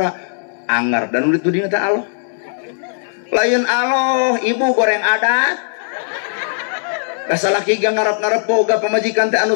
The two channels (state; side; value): silent; right; digital silence